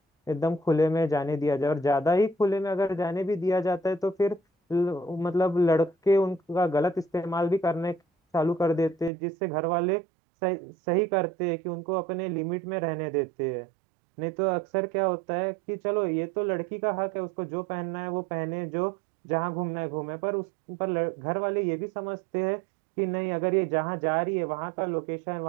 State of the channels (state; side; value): drops out; left; at 9.1 s